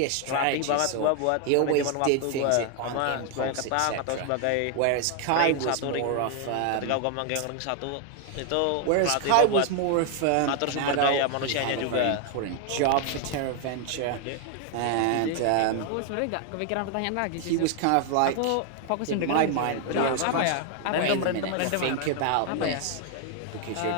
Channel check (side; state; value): both; different; correlation 0.01